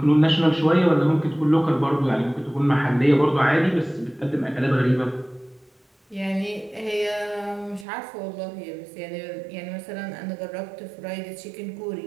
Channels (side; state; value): left; drops out; at 7.9 s